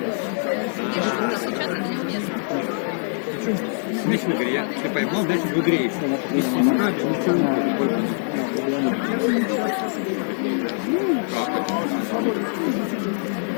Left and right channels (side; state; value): right; silent; 63 dB below the other